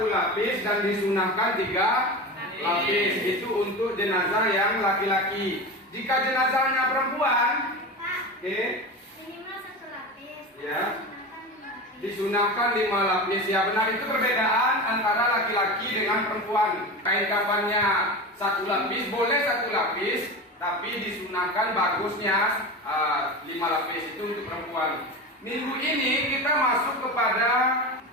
lapis dan disunahkan 3 lapis. Itu untuk jenazah yang laki-laki. Jika jenazahnya perempuan, oke, Minimal 1 lapis. Ya. Disunahkan 5 lapis. disunahkan 5 lapis. Ya benar, itu perbedaan antara laki-laki dengan perempuan. Kain kafannya 1 lapis, boleh 1 lapis, tapi disunahkan bagusnya 5 lapis, itu untuk perempuan. Minggu ini kita masuk kepada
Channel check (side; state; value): both; normal; correlation 0.26